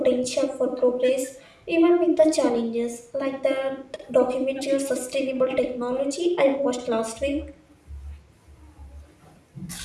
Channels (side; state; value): both; identical; correlation 1.00